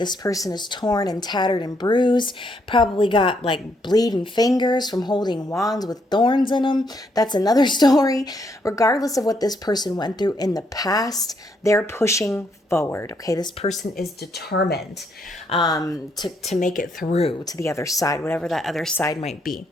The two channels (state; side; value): normal; both; correlation 0.74